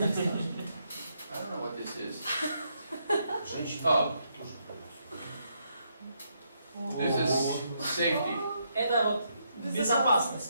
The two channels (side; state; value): both; inverted; correlation -0.77